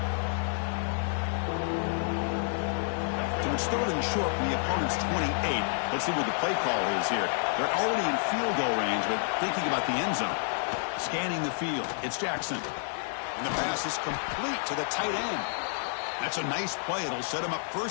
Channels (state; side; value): silent; right; digital silence